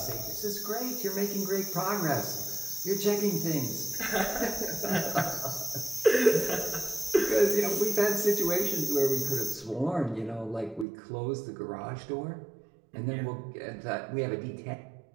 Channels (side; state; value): left; drops out; at 10.9 s